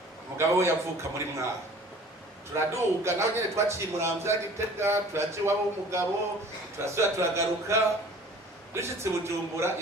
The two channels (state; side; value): normal; both; correlation 0.47